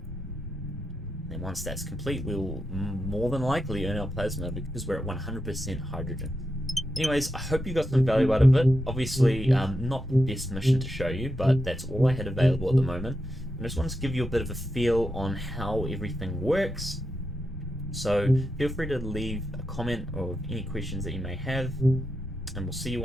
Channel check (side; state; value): both; normal; correlation 0.87